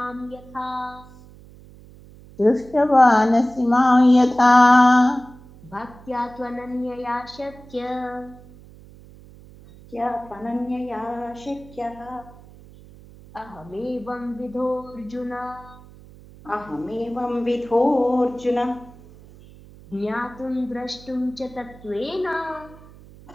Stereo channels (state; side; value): noise; right; hum, 21 dB below the sound